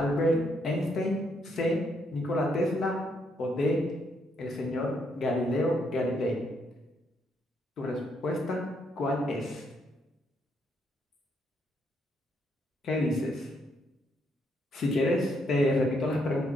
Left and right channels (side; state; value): both; normal; correlation 0.74